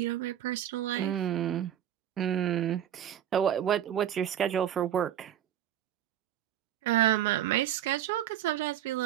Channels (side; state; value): left; quieter; 10.7 dB